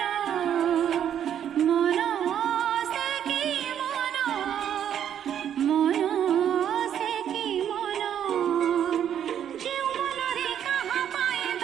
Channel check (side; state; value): left; quieter; 9.6 dB